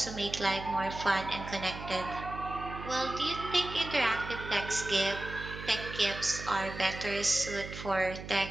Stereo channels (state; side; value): noise; right; hum, 10 dB below the sound